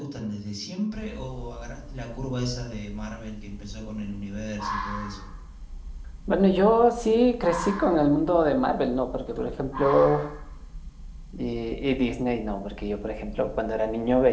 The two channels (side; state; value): both; identical; correlation 1.00